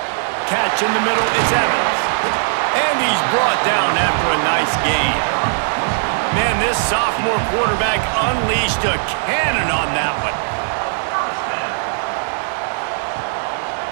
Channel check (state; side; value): silent; left; 67 dB below the other